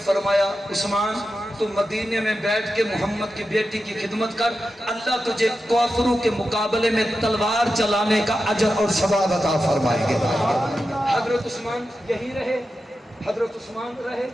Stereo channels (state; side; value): normal; both; correlation 0.91